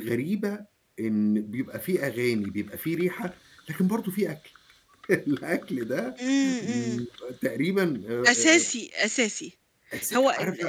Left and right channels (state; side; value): identical; both; correlation 1.00